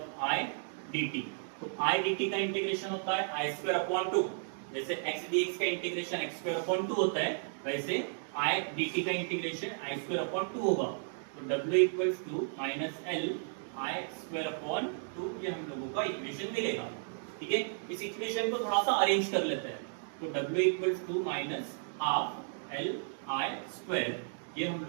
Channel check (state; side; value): silent; left; digital silence